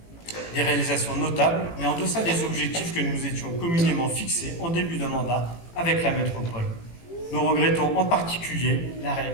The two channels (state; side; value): late; right; 18 ms